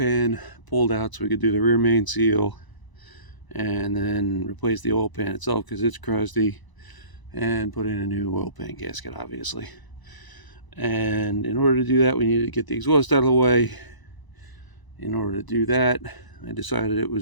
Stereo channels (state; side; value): late; right; 1.0 ms